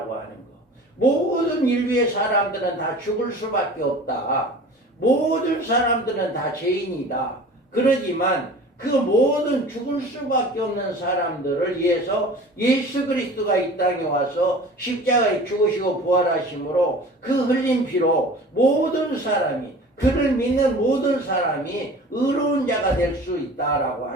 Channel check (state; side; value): normal; both; correlation 0.41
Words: 하는 것. 모든 인류의 사람들은 다 죽을 수밖에 없다. 모든 사람들은 다 죄인이다. 그러지만 그 모든 죽을 수밖에 없는 사람들을 위해서 예수 그리스도가 이 땅에 와서 십자가에 죽으시고 부활하심으로 그 흘린 피로 모든 사람이 그를 믿는 모든 사람이 의로운 자가 될 수 있다라고